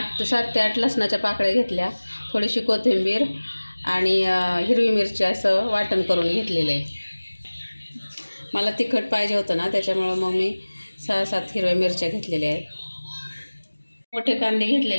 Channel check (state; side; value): inverted; both; correlation -1.00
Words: ते 8 लसणाच्या पाकळ्या घेतल्या, थोडीशी कोथिंबीर आणि हिरवी मिरची असं वाटण करून घेतलेलं आहे. मला तिखट पाहिजे होतं ना, त्याच्यामुळं मग मी 6-7 हिरव्या मिरच्या घेतलेल्या आहेत. मोठे कांदे